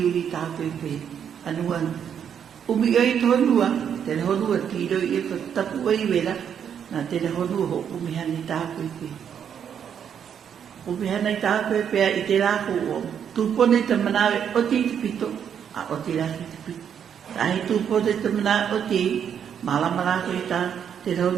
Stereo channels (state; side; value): quieter; left; 8.3 dB